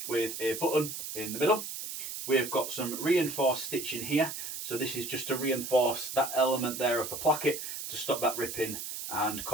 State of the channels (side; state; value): right; noise; hiss, 7 dB below the sound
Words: with a button in the middle. We've got some reinforced stitching here. So this is just to reinforce that element there of the placket to stop that ripping and